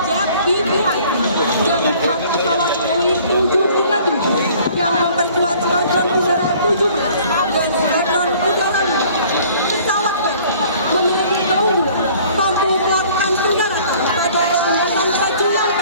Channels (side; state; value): both; inverted; correlation -0.53